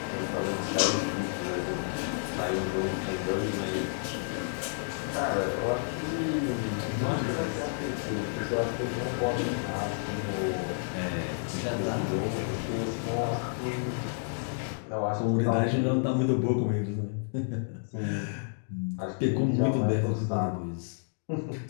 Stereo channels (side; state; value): right; silent; digital silence